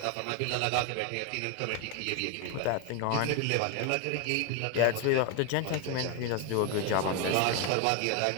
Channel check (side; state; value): both; different; correlation 0.01